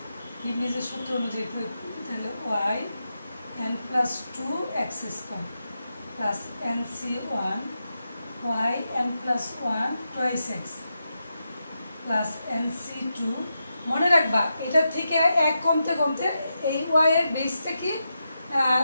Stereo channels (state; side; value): inverted; both; correlation -0.87